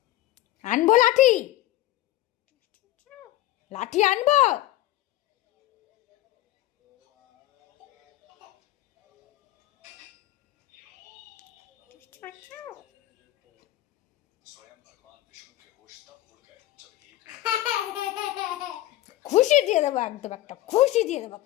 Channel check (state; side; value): quieter; right; 15.4 dB